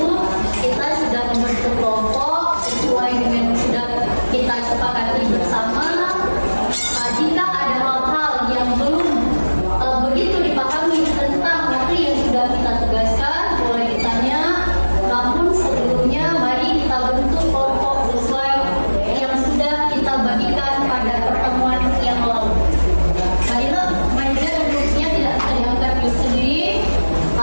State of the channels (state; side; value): inverted; both; correlation -1.00